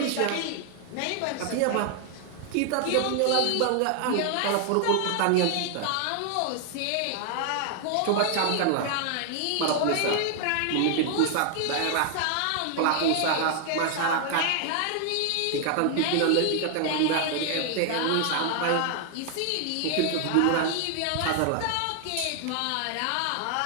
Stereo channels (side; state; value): both; different; correlation 0.00